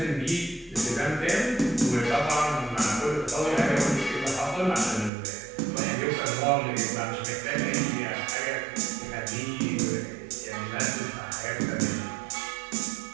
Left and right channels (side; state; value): left; drops out; at 5.1 s